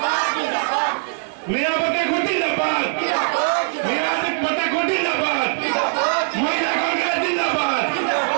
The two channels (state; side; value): silent; left; 57 dB below the other